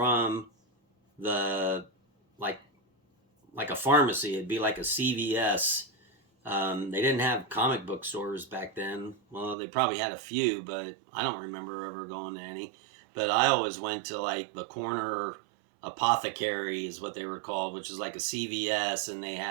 the, like a pharmacy. It'd be like a CVS. They didn't have comic book stores back then. Well, they probably had a few, but I don't remember ever going to any. But I always went to like the corner apothecary is what they were called, which is like a CVS, and they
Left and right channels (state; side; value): drops out; left; at 9.6 s